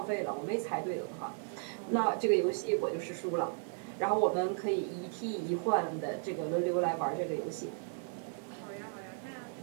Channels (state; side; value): silent; left; 54 dB below the other